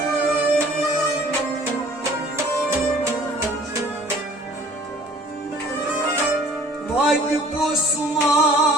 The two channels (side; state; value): both; normal; correlation 0.53